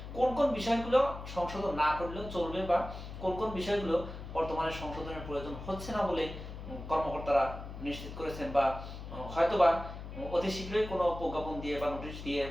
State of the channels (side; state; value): left; noise; hum, 10 dB below the sound